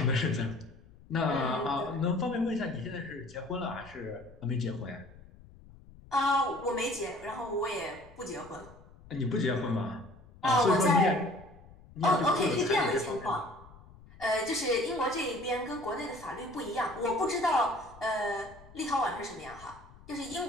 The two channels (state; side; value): noise; left; rumble, 21 dB below the sound